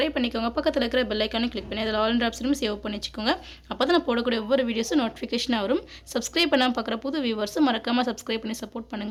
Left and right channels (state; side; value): identical; both; correlation 1.00